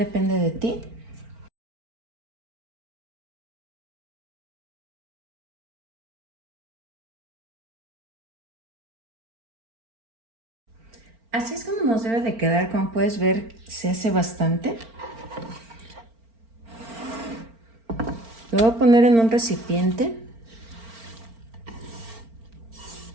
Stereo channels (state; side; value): late; left; 4.4 ms